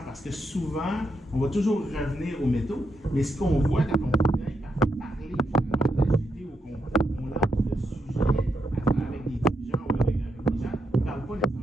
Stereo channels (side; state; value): both; normal; correlation 0.81